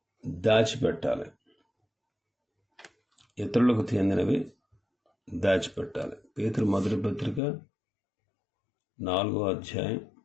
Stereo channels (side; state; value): right; drops out; at 7.4 s